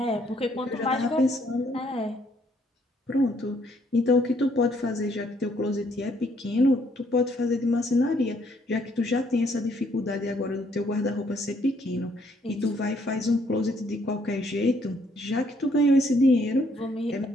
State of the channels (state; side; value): normal; both; correlation 0.68